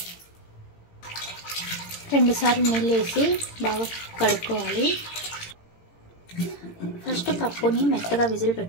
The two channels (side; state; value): right; late; 18 ms